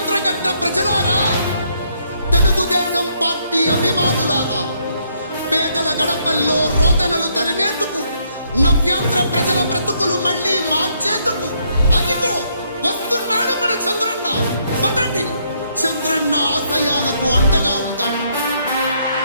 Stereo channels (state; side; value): inverted; both; correlation -0.72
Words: గడ్డ ప్రజలారా, తెలుగుదేశం పార్టీ అభిమానులారా, పేదల గడపల్లో రోదనలు తరిమేందుకు, నవ్యాంధ్ర ప్రజల బ్రతుకులు మళ్లీ మార్చేందుకు అదిగో వస్తున్నాడు మన చంద్రన్న. పదండి, చంద్రన్న ఆశయాలకు అండగా ఉందాం.